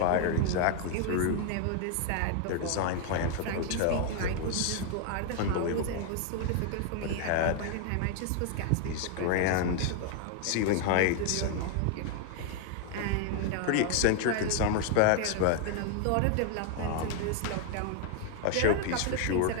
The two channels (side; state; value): both; different; correlation 0.00